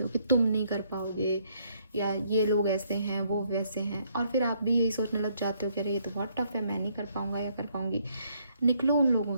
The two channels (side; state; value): both; inverted; correlation -0.69